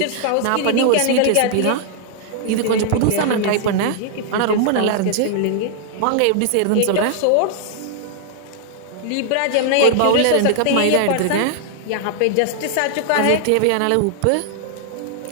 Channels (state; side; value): different; both; correlation -0.01